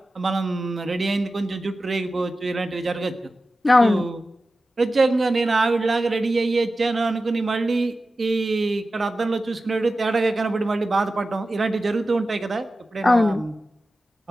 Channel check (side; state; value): both; normal; correlation 0.94